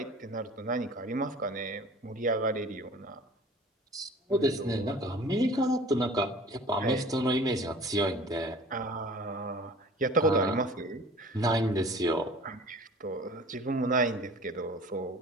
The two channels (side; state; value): both; normal; correlation 0.45